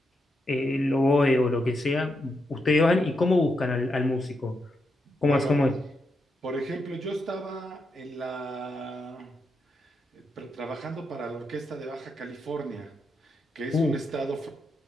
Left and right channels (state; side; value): normal; both; correlation 0.83